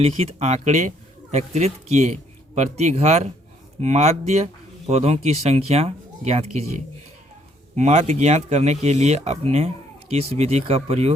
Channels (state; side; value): normal; both; correlation 0.67